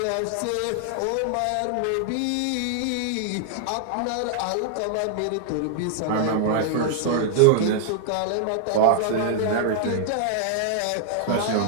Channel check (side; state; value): both; different; correlation -0.01